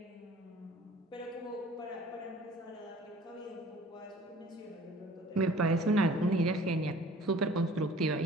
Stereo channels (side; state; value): both; normal; correlation 0.49